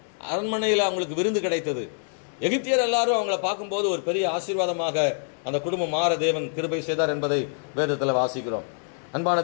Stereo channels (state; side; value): silent; right; 61 dB below the other